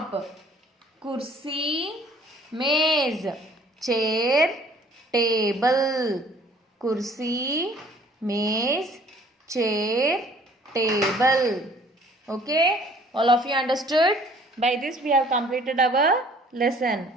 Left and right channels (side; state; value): both; normal; correlation 0.55